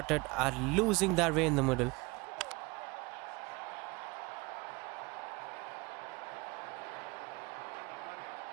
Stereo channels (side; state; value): left; quieter; 25.2 dB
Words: are losing their way in the middle.